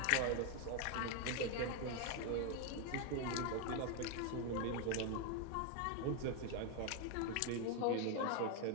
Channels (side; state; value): both; different; correlation 0.01